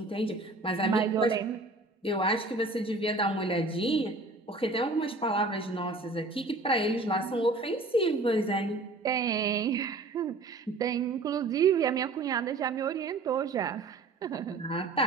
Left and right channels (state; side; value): quieter; left; 3.3 dB